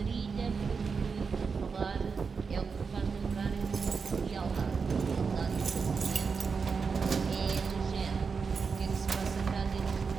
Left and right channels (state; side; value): quieter; left; 5.3 dB